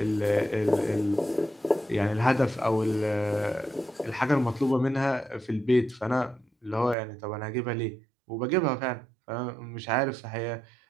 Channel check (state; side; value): drops out; left; at 7.0 s